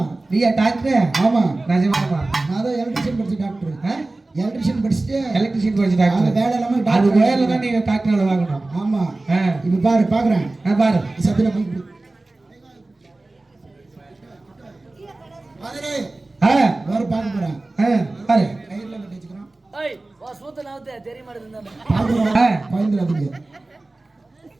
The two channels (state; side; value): quieter; left; 3.0 dB